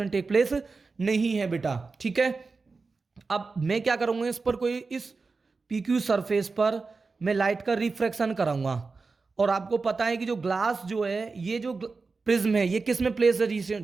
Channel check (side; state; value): left; quieter; 4.2 dB